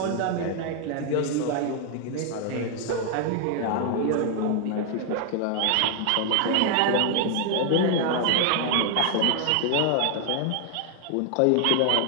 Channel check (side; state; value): both; different; correlation 0.00